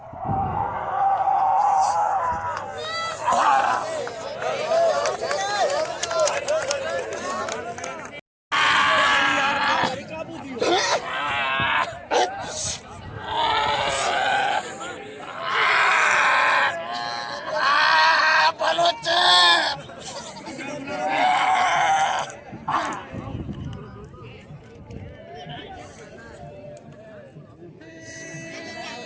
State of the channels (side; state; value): both; identical; correlation 1.00